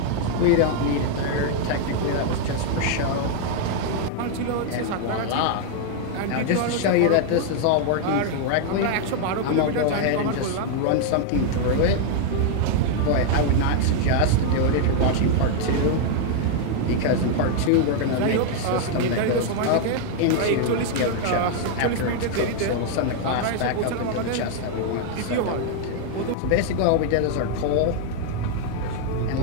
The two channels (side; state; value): both; different; correlation 0.00